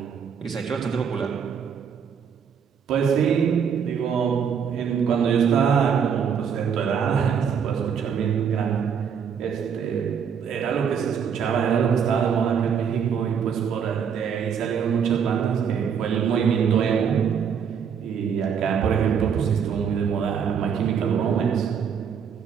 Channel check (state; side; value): quieter; left; 7.2 dB